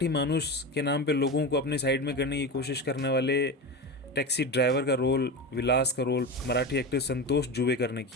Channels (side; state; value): both; normal; correlation 0.23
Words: मानुस के नाम पे लोगों को अपने साइड में करने की कोशिश करने वाले टैक्सी ड्राइवर का रोल, विलास का रोल मराठी एक्टर संतोष जुबेकर ने